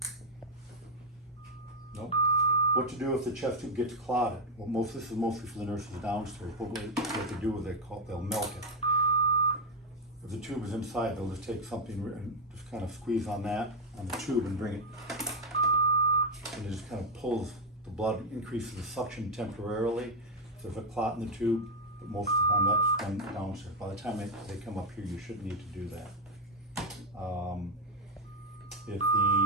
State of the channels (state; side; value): normal; both; correlation 0.03